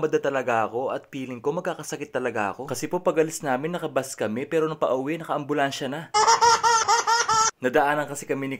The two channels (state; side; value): identical; both; correlation 1.00